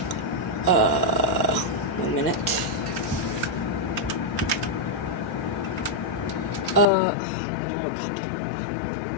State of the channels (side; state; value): right; drops out; at 6.9 s